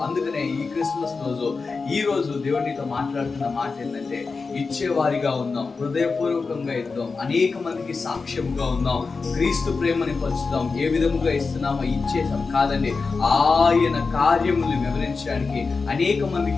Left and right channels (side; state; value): right; quieter; 4.4 dB